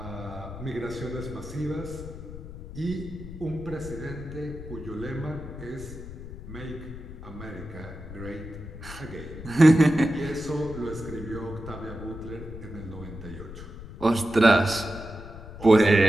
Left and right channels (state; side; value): noise; left; rumble, 12 dB below the sound